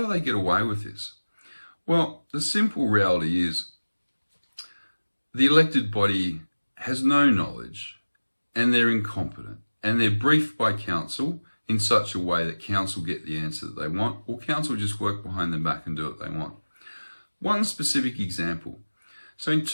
they get away with this? Well, the simple reality is the elected body has no knowledge and they're incompetent and they're briefed by council in such a way that council get the answer that they want, or council just work behind their back and do what they want. One specific example. So in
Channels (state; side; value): inverted; both; correlation -1.00